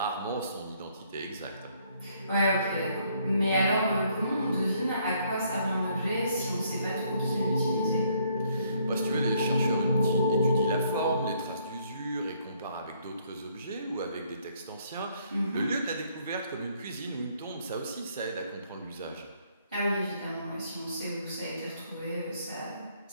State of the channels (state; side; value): inverted; both; correlation -0.67